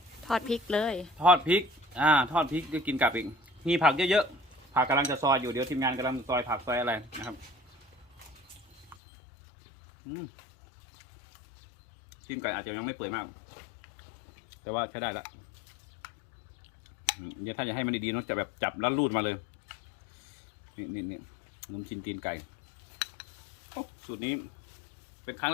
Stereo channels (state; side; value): drops out; right; at 9.0 s